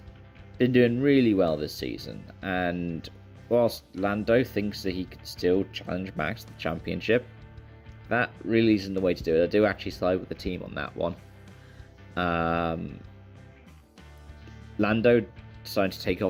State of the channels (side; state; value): both; identical; correlation 1.00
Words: been doing really well this season, and whilst Lando thinks that he could still challenge Max to the championship, that really isn't the way to do it. I do actually side with the team on that one. Lando decided to take